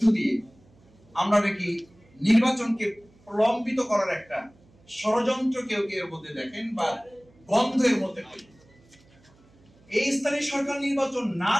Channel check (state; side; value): noise; right; hum, 30 dB below the sound